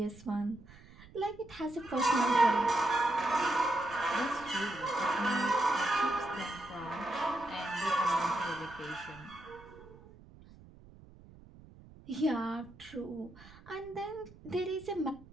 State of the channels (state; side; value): noise; right; rumble, 21 dB below the sound